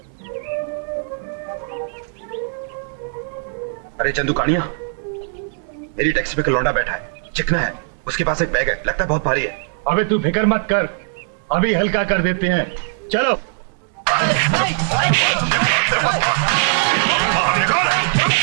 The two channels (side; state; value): left; silent; digital silence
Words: अरे चंदू कानिया, मेरी टैक्सी पे लौंडा बैठा है, चिकना है, उसके पास एक बैग है, लगता है बहुत भारी है। अबे तू फिक्र मत कर, अभी हल्का कर देते हैं। चलो।